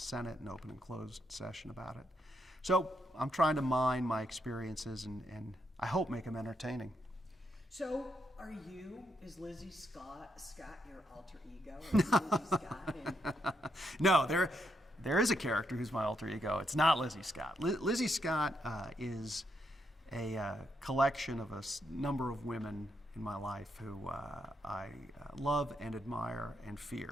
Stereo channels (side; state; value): both; normal; correlation 0.79